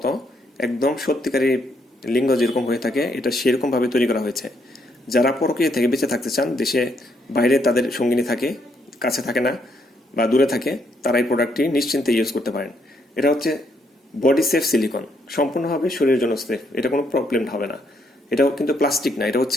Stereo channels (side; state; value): both; normal; correlation 0.74